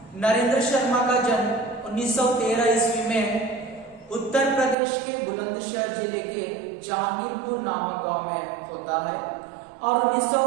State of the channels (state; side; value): drops out; left; at 4.8 s